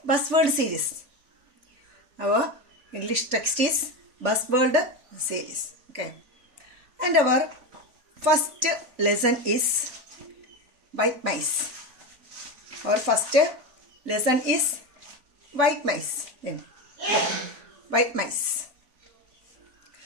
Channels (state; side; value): late; left; 4.1 ms